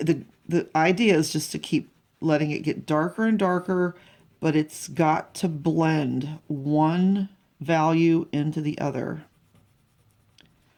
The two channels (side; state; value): both; identical; correlation 1.00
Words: idea is just to keep letting it get darker and darker, but it's got to blend one value into the other.